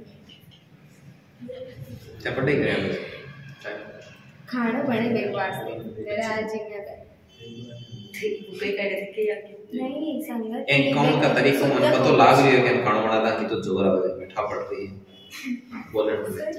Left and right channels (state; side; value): identical; both; correlation 1.00